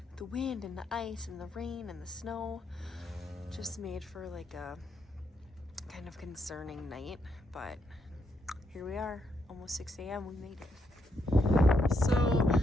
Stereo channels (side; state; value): both; normal; correlation 0.78